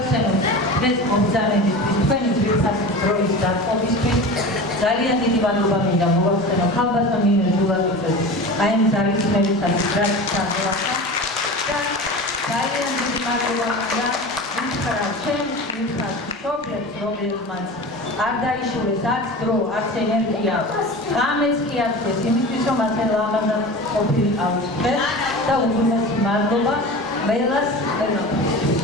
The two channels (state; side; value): normal; both; correlation 0.32